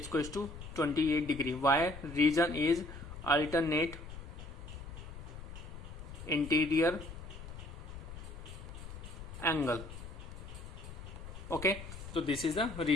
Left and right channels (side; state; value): left; noise; rumble, 11 dB below the sound